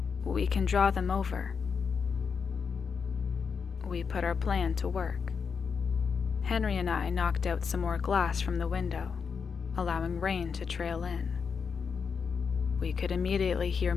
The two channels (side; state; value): right; quieter; 5.9 dB